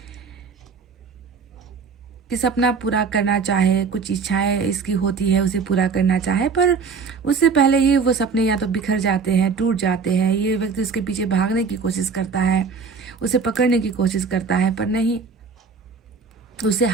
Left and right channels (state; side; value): quieter; left; 5.2 dB